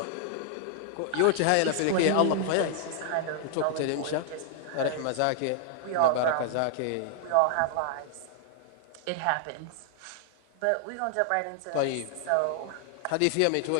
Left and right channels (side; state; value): both; different; correlation 0.00